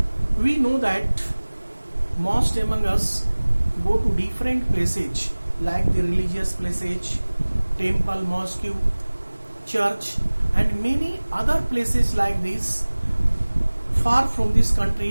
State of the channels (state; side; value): inverted; both; correlation -1.00